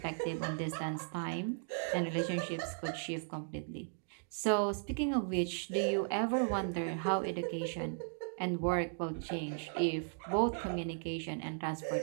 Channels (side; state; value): left; silent; digital silence